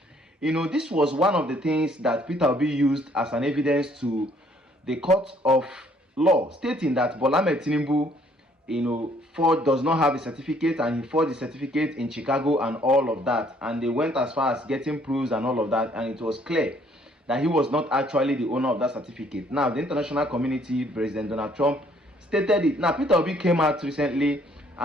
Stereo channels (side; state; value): both; normal; correlation 0.63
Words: You know, this was one of the things that Peter Obi used as an evidence to the court of law, stating that Bola Ahmed Tinubu, does not have a certificate, and he forged the certificate in Chicago and all of that. And they went as far as getting proofs and all of that, and it was clear that he was not actually the owner of that certificate. Now, the international community, President Donald Trump, stated it. Now, Peter Obi came out recently